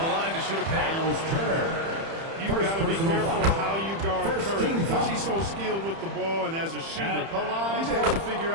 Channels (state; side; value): late; left; 30 ms